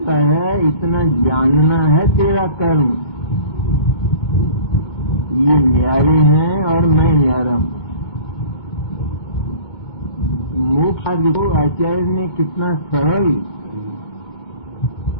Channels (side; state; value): right; late; 2.2 ms